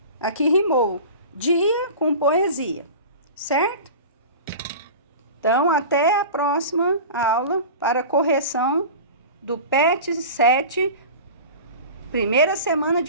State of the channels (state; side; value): inverted; both; correlation -0.35